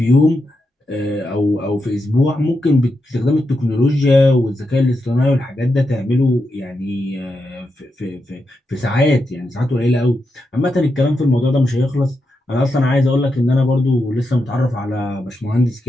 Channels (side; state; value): both; normal; correlation 0.86